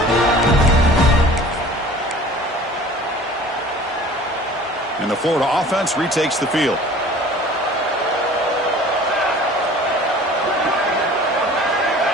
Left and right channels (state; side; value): normal; both; correlation 0.46